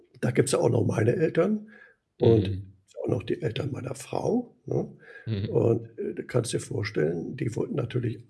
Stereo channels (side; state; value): both; identical; correlation 1.00